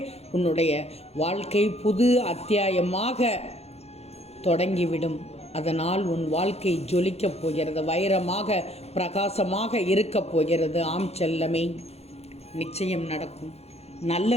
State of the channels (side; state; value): right; late; 0.30 ms